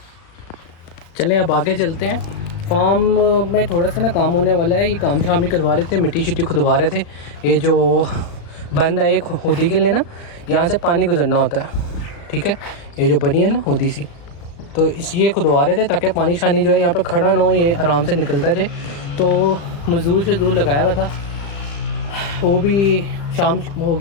चलें अब आगे चलते हैं। फार्म में थोड़ा सा ना काम होने वाला है, ये काम शाम ही करवा रहे थे, मिट्टी शिट्टी खुदवा रहे थे। ये जो बंद है एक होदी के लिए ना, यहाँ से पानी गुजरना होता है, ठीक है, ये जो बनी है ना होदी सी, तो इस ये खुदवा रहे थे ताकि पानी शानी जो है यहाँ पे खड़ा ना हो, ये आराम से निकलता जाए। तो मजदूर लगाया हुआ था, वो भी शाम हो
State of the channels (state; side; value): late; right; 36 ms